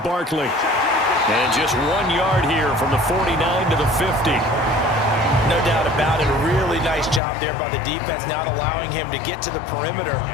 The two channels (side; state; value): right; drops out; at 7.2 s